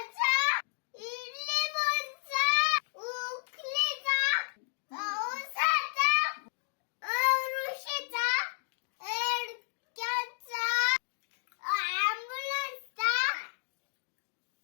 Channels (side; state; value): right; silent; digital silence